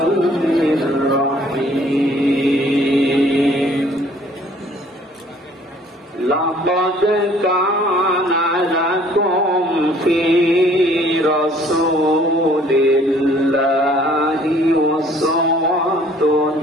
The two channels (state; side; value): normal; both; correlation 0.57